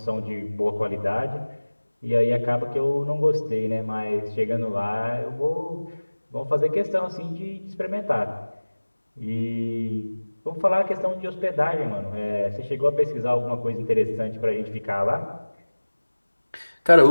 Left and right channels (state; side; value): inverted; both; correlation -1.00